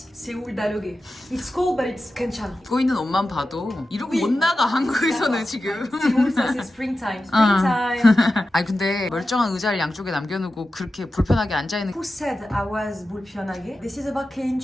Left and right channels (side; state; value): both; normal; correlation 0.93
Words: 세울 다르게. It's cold, but it's 괜찮아. 입고 있는 옷만 봐도 이러고 못 나가 한국에서는 지금. 세울 사실 springtime. Springtime. 아니 근데 멀쩡한 의자를 양쪽에 남겨놓고 그렇게 불편하게 앉아있는. Who said I was 불편하게? This is about 개인